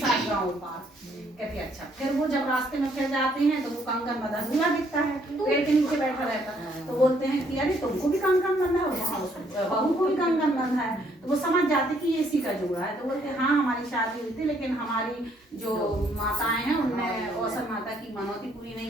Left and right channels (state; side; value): normal; both; correlation 0.67